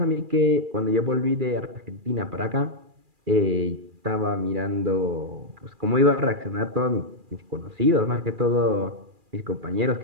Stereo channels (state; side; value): late; left; 2.4 ms